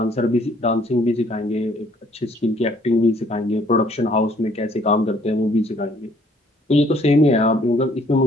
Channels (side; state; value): both; normal; correlation 0.62